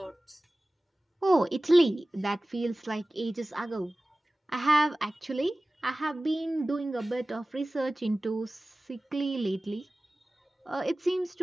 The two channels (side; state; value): both; normal; correlation 0.97